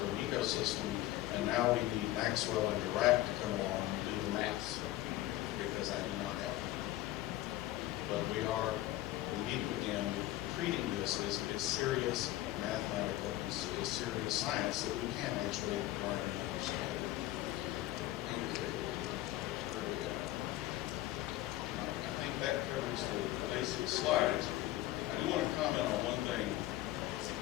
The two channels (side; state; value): right; quieter; 15.6 dB